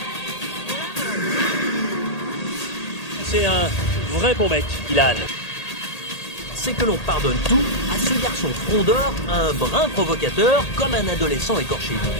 C'est un vrai bon mec, Dylan. C'est que l'on pardonne tout à ce garçon frondeur, un brin provocateur, comme un adolescent écorché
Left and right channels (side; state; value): right; late; 1.8 ms